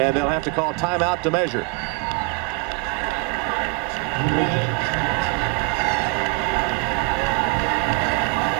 they'll have to call timeout to measure.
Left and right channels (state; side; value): quieter; left; 25.9 dB